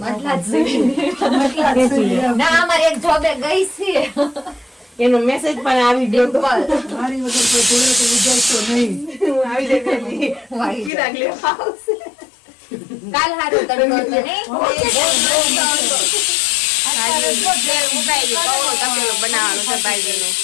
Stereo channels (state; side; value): drops out; right; at 10.9 s